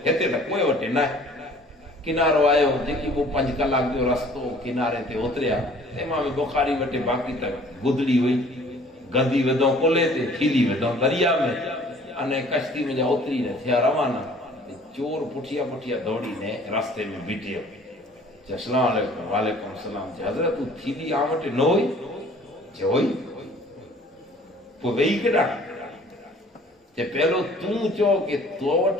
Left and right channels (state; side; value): normal; both; correlation 0.53